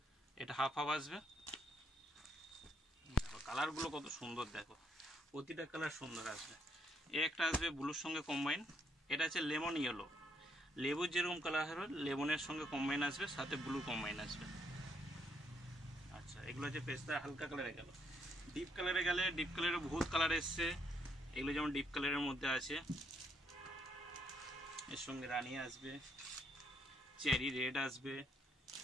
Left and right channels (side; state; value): both; normal; correlation 0.72